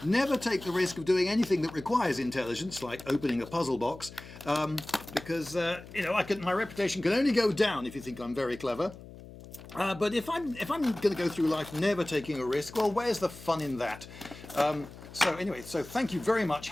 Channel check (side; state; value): left; noise; hum, 16 dB below the sound